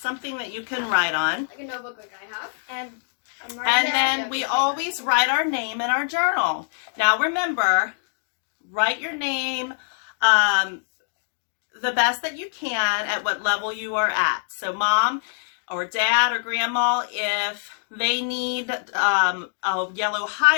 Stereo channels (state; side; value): silent; right; digital silence